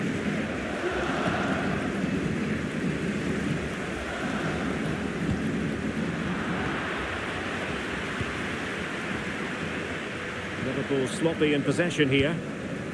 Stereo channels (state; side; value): identical; both; correlation 1.00